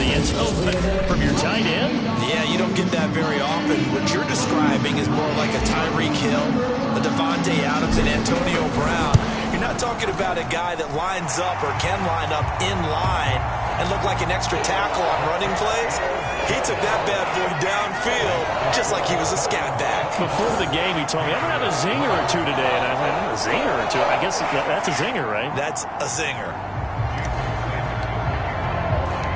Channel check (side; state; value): both; identical; correlation 1.00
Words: end zone, but from your tight end? Yeah, you don't get that very often. What you're describing is more like a Tyreek Hill, a Devontae Adams, and Antonio Brown. You're not talking about a guy that lines up or can line up in line and look like an extra tackle on running plays. He took that bad boy downfield just like he was a scat back. Before the game, he told me, I'm going to have a zinger or 2 today. And I went, a zinger or 2? I guess that's a zinger, right? That's a zinger.